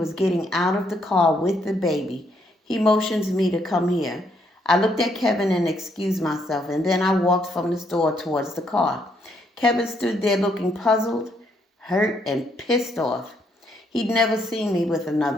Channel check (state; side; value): normal; both; correlation 0.73